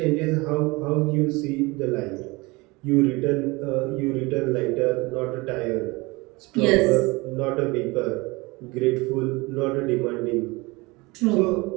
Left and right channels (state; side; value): quieter; left; 24.1 dB